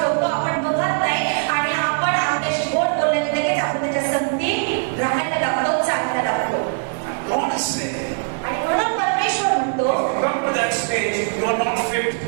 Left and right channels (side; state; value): left; silent; 59 dB below the other